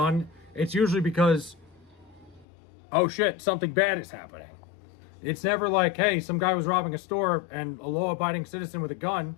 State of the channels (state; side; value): drops out; right; at 2.5 s